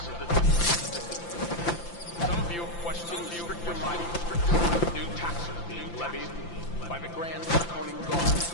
Some of you have questioned stricter mining, new taxes being levied by the Grand Draconian Guard.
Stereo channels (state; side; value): late; right; 5.8 ms